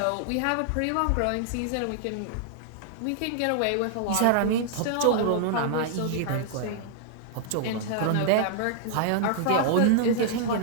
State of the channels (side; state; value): both; different; correlation -0.01